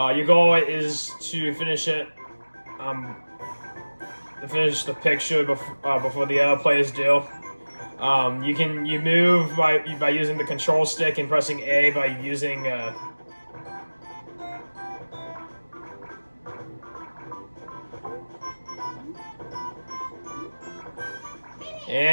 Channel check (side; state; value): both; inverted; correlation -1.00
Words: goal is to finish it, finish the picture before the other players do. You move by using the control stick and pressing A by using.